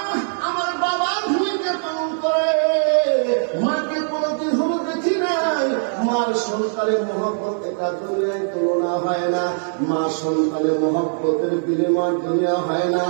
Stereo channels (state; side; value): silent; left; digital silence